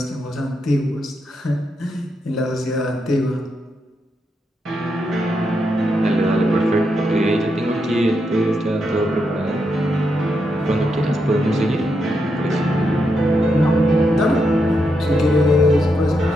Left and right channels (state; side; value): normal; both; correlation 0.82